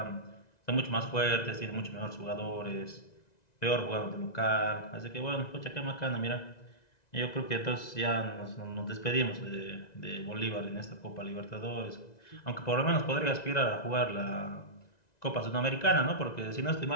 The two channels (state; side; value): late; right; 1.9 ms